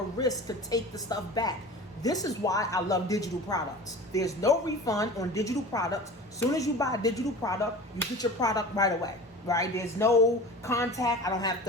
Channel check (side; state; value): both; normal; correlation 0.37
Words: risk to take the stuff back. This is why I love digital products. There's no refund on digital products. As soon as you buy a digital product, you get your product right away, right? There's no contact. I don't have